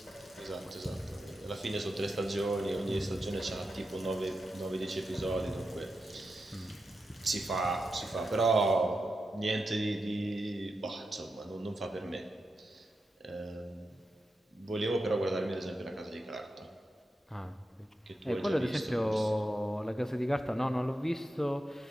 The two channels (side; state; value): both; normal; correlation 0.89